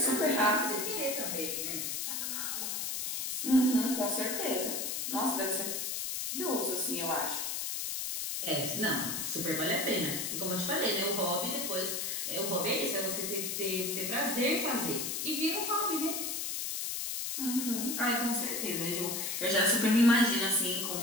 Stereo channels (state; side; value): noise; left; hiss, 2 dB below the sound